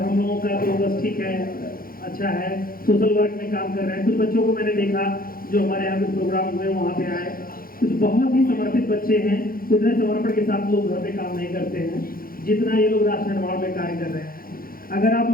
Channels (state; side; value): late; right; 0.42 ms